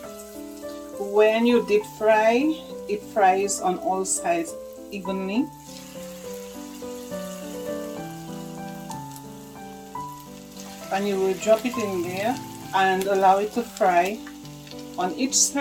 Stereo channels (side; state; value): both; identical; correlation 1.00